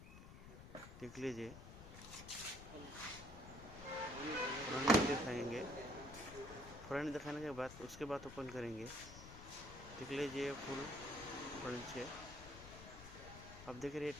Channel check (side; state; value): left; noise; rumble, 13 dB below the sound